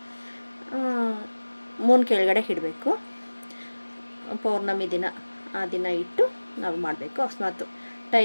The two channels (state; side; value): inverted; both; correlation -1.00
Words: ಮೂನ್ ಕೆಳಗಡೆ ಇಡಬೇಕು. ಪೌರ್ಣಮಿ ದಿನ, ಆ ದಿನ ಇಟ್ಟು ನಾವು ಮಾಡಬೇಕು. ಅಕಸ್ಮಾತ್